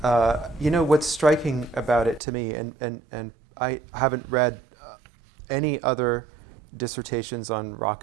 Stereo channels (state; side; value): drops out; left; at 2.2 s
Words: you know, what's striking about it to me, and I haven't read any other dissertations on